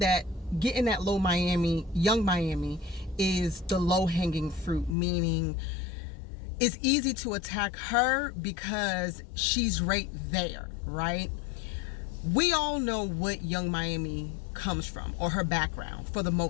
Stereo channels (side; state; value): right; drops out; at 5.0 s